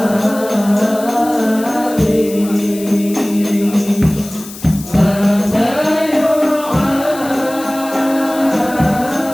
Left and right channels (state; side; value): noise; left; hiss, 15 dB below the sound